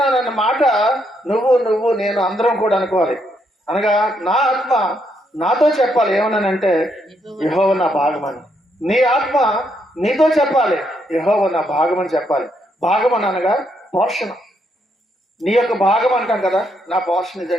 మాట నువ్వు నేను అందరం కూడా అనుకోవాలి. అనగా నా ఆత్మ నాతో చెప్పాలి ఏమన్నానంటే, యెహోవా నా భాగమని. నీ ఆత్మ నీతో చెప్పాలి, యెహోవా నా భాగమని చెప్పాలి. భాగమని అనగా పోషణ. నీ యొక్క భాగం అంటాం కదా, నా పోర్షన్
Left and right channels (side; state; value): both; normal; correlation 0.76